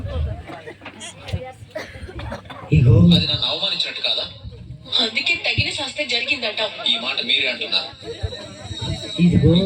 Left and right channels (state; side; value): identical; both; correlation 1.00